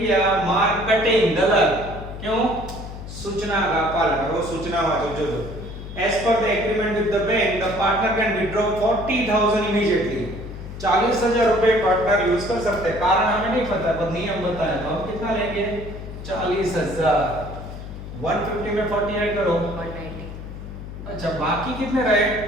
मार्क कटिंग गलत, क्यों? सूचना का पालन करो, सूचना वाचो जो as per the agreement with the bank the partner can withdraw 40,000 immediately. 40,000 रुपए पार्टनर यूज कर सकते हैं। कारण हमें नहीं पता, पर नियम बताया तो हम कितना लेंगे 40,000। 150 में 40 ऐड करो 190। अच्छा बाकी कितने रहे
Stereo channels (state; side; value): noise; left; hum, 11 dB below the sound